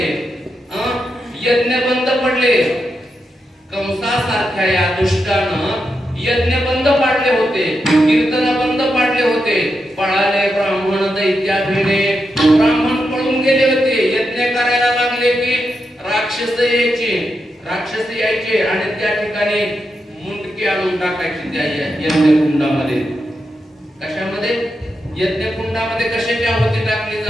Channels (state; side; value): normal; both; correlation 0.86